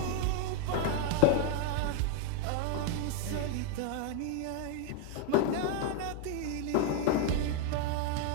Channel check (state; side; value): different; both; correlation 0.01